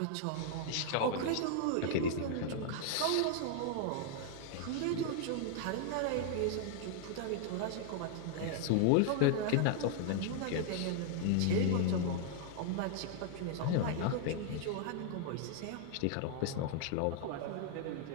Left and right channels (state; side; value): different; both; correlation -0.01